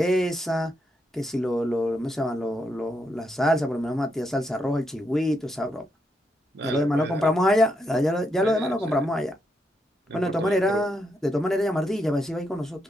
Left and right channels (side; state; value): both; normal; correlation 0.80